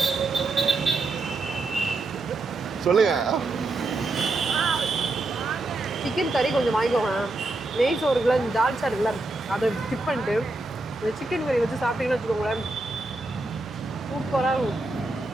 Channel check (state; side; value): quieter; left; 3.0 dB